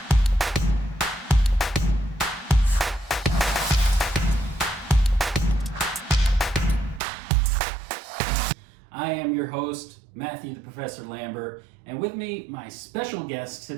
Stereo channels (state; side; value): drops out; left; at 7.0 s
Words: I am your host, Matthew the Professor Lambert, and with me, my special guest to